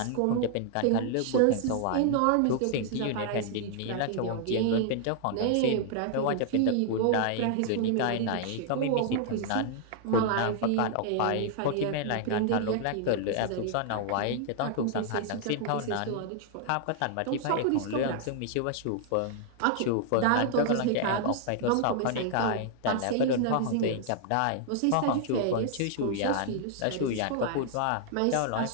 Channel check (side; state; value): both; different; correlation -0.01